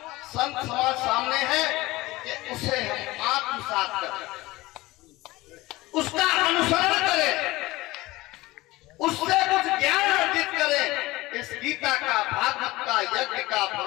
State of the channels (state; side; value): quieter; right; 19.5 dB